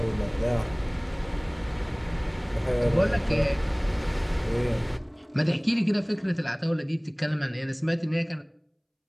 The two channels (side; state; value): both; identical; correlation 1.00